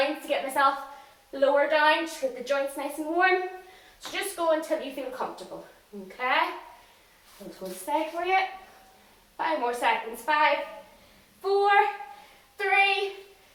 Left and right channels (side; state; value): both; identical; correlation 1.00